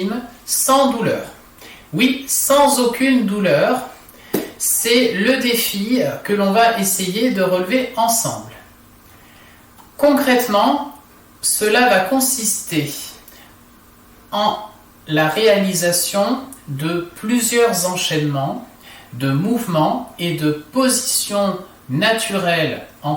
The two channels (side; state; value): both; identical; correlation 1.00